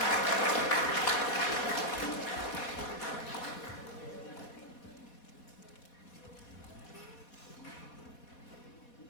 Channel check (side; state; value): right; late; 4.2 ms